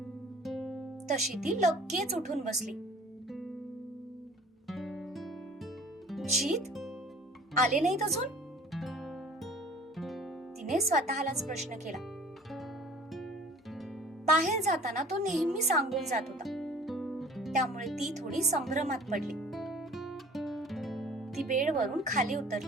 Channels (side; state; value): both; normal; correlation 0.49